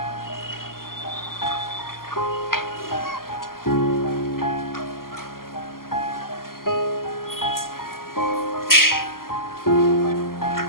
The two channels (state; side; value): late; right; 0.92 ms